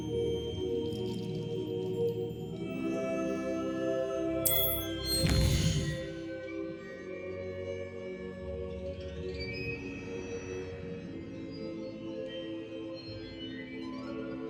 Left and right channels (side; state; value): both; identical; correlation 1.00